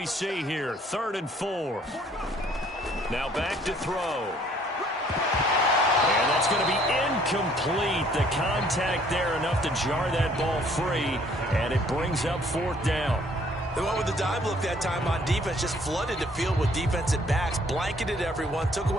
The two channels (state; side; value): normal; both; correlation 0.61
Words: see here? 3rd and 4. Now back to throw. And that's going to be incomplete. The contact there enough to jar that ball free, and it brings up 4th down. They went with the dime look that time on defense, just flooded the field with defensive backs, blanketed everyone, took